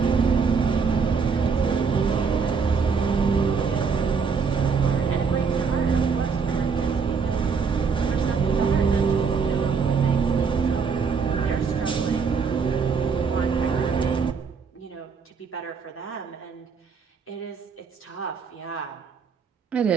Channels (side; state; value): left; quieter; 5.6 dB